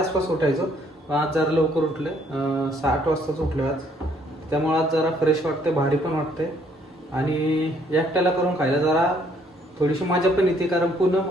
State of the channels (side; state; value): both; normal; correlation 0.65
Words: आसपास उठायचो. आज जरा लवकर उठले, 8 वाजताच उठले आज. त्यामुळे आज जरा फ्रेश वाटते, भारी पण वाटते आणि एकट्याला करून खायला जरा थोडीशी मजा पण येते, कारण